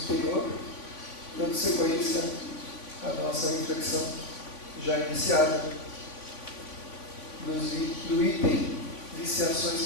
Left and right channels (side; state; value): right; late; 3.5 ms